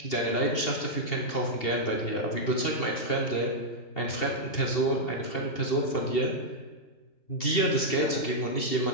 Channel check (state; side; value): late; right; 2.7 ms